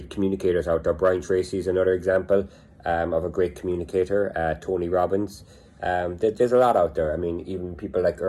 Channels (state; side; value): identical; both; correlation 1.00